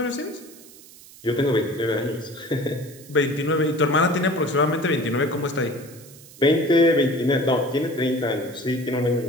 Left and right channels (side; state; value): right; noise; hiss, 21 dB below the sound